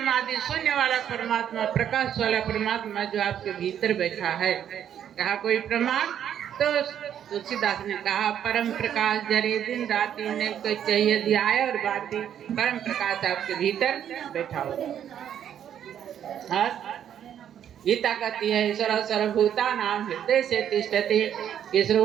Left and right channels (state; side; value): quieter; left; 9.6 dB